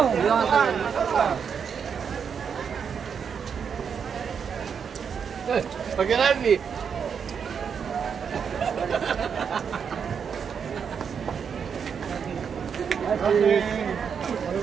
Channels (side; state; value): left; quieter; 6.9 dB